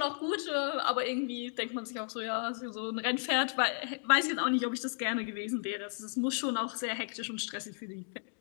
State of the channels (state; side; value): silent; right; 55 dB below the other